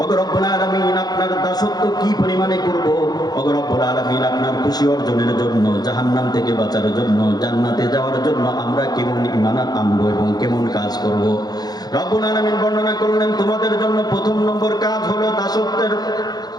ও রব্বুল আলামিন আপনার দাসত্ব কি পরিমাণে করব, ও রব্বুল আলামিন আপনার খুশি অর্জনের জন্য, জাহান্নাম থেকে বাঁচার জন্য, জান্নাতে যাওয়ার জন্য আমরা কেমন ঈমান আনবো এবং কেমন কাজ করব। রব্বুল আলামিন বর্ণনা করলেন, তোমাদের জন্য প্রথম নম্বর কাজ হলো দাসত্বের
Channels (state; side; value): late; right; 0.19 ms